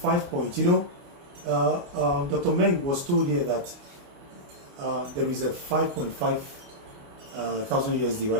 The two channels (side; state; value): left; late; 28 ms